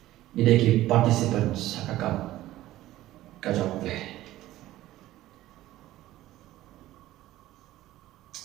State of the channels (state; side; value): quieter; left; 15.3 dB